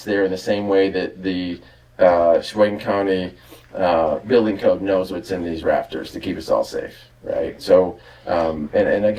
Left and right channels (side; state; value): both; identical; correlation 1.00